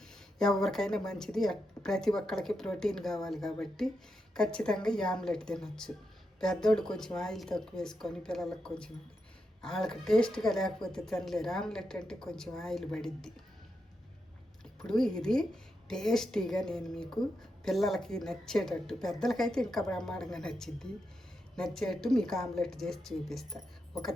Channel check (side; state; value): both; normal; correlation 0.85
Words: ఎవరికైనా మంచిది. ప్రతి ఒక్కరికి ప్రోటీన్ కావాలి కాబట్టి ఖచ్చితంగా ఈ ఆమ్లెట్ తినొచ్చు. పెద్దోళ్ళు కొంచెం ఆయిల్ తక్కువ వేసుకొని పిల్లలకు కొంచెం వాళ్ళకి టేస్ట్గా లేకపోతే తినలేరు. ఆమ్లెట్ అంటే కొంచెం ఆయిల్ పడిద్ది. ఇప్పుడు ఇది టేస్టీగా నేను మీకు పిల్లలకి నచ్చేటట్టు, పెద్దలకైతే ఇంకా బ్రహ్మాండంగా నచ్చేటట్టు మీకు ఆమ్లెట్ చేసి చూపిస్తా. ఒక